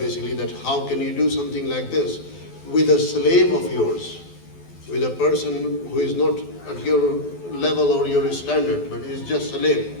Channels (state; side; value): late; right; 12 ms